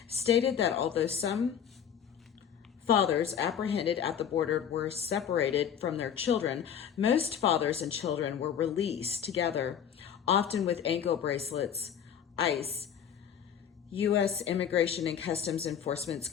stated that although some fathers apprehended at the border were separated from their children, most fathers and children were released together, often with ankle bracelets. ICE, U.S. Immigration and Customs Enforcement,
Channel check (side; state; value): right; quieter; 8.5 dB